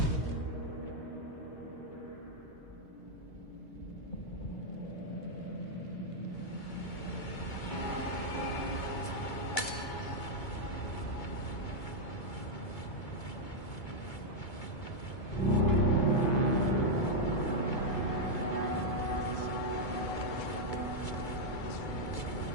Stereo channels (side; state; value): right; late; 2.3 ms